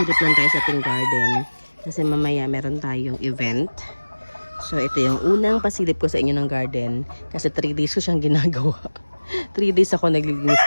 lang tayo sa ating garden. Kasi mamaya meron tayong event. So ito yung unang pasilip ko sa inyo ng garden. Kasi 3 days ko siyang ginagawa. 3 days ako naglilinis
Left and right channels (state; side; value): inverted; both; correlation -1.00